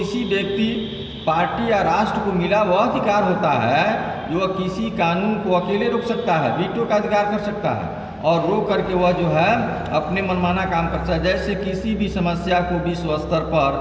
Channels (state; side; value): identical; both; correlation 1.00